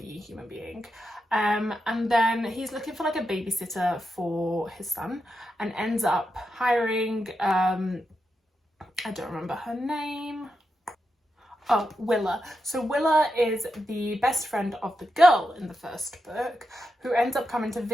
human being. And then he's looking for like a babysitter for his son and ends up hiring, I don't remember her name. Oh, Willa. So Willa is the best friend of the girl in the first book who ends up coming to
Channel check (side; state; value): both; normal; correlation 0.87